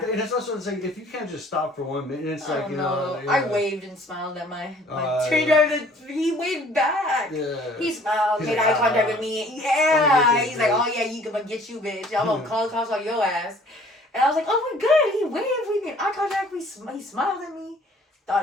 and it's also, it's like, if you can't just stop for 1 minute, it's like, I waved and smiled at my train driver. He waved back. Yeah. He smiled, made eye contact with me. Yeah. He's like, oh yeah, you can get you, bitch. I'm gonna call the cops on your ass. And I was like, oh my god, he waved. We made eye contact. He smiled at me.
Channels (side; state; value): both; normal; correlation 0.55